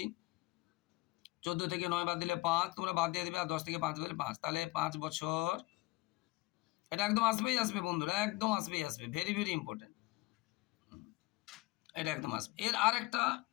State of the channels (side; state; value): right; quieter; 21.3 dB